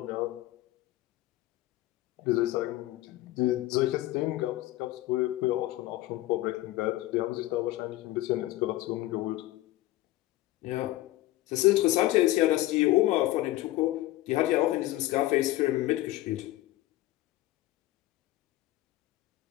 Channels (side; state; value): right; quieter; 16.6 dB